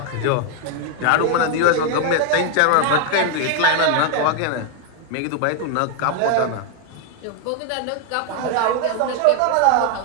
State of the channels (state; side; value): different; both; correlation 0.00